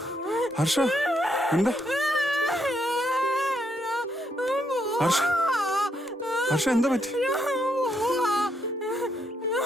ഹർഷ, എന്താ? ഹർഷ, ഹർഷ, എന്താ പറ്റി?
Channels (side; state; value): both; normal; correlation 0.77